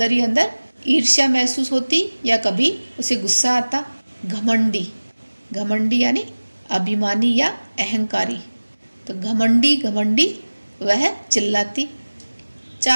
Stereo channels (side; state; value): both; inverted; correlation -1.00